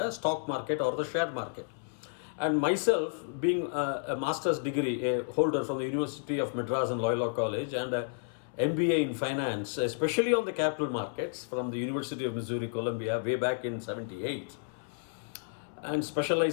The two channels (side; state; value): right; silent; 57 dB below the other